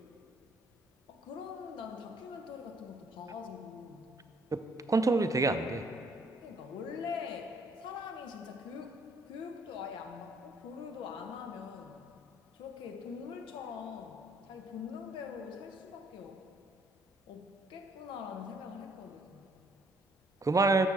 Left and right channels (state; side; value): normal; both; correlation 0.64